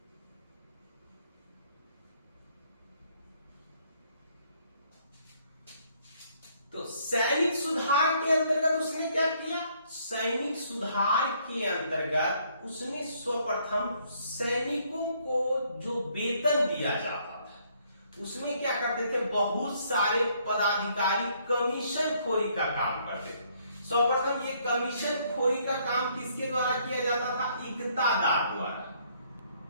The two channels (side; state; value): both; inverted; correlation -0.67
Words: तो सैनिक सुधार के अंतर्गत उसने क्या किया? सैनिक सुधार के अंतर्गत उसने सर्वप्रथम सैनिकों को जो वेतन दिया जाता था, उसमें क्या करते थे, बहुत सारे पदाधिकारी कमीशन खोरी का काम करते थे। सर्वप्रथम ये कमीशन खोरी का काम किसके द्वारा किया जाता था? इक्तादार द्वारा।